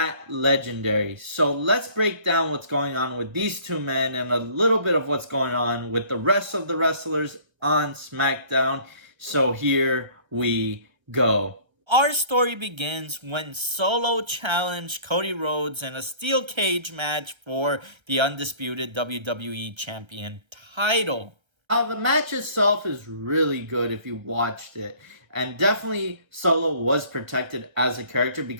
legendary. So let's break down what's going on with these two men and a little bit of what's going on with the rest of the wrestlers on SmackDown. So here we go. Our story begins when Solo challenged Cody Rhodes in a steel cage match for the undisputed WWE Champion title. The match itself is really good if you watched it. And definitely Solo was protected as a character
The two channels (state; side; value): late; left; 1.3 ms